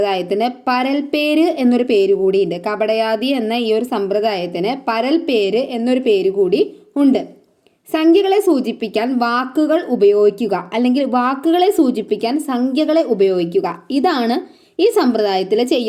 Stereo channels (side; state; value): both; identical; correlation 1.00